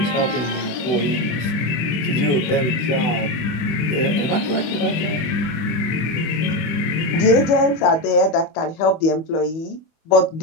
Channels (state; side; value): late; right; 25 ms